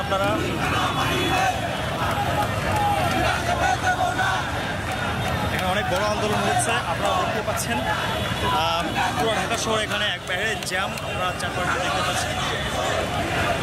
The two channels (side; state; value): both; identical; correlation 1.00